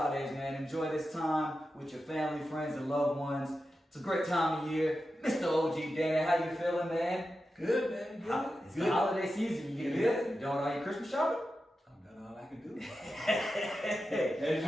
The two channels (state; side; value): normal; both; correlation 0.91